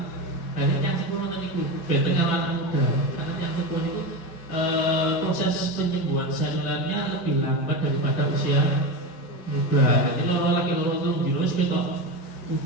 Jadi yang sepuh nanti itu, benteng anak muda, karena yang sepuh itu proses penyembuhan selulernya lebih lambat daripada usia muda. Jadi kalau lagi loro turun di nus kita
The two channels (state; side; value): late; right; 6.0 ms